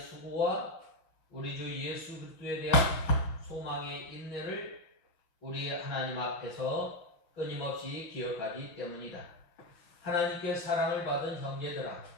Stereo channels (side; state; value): right; late; 5.5 ms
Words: 우리 주 예수 그리스도에 대한 소망의 인내를 우리 하나님 앞에서 끊임없이 기억하기 때문이다. 하나님께 사랑을 받은 형제들아,